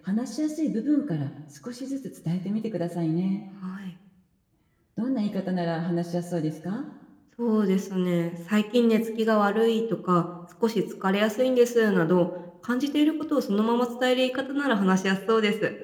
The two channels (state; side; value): identical; both; correlation 1.00